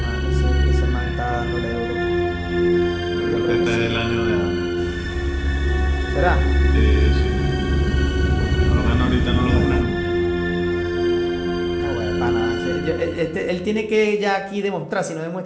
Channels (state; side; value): identical; both; correlation 1.00